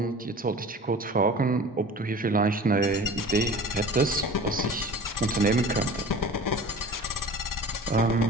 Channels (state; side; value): normal; both; correlation 0.40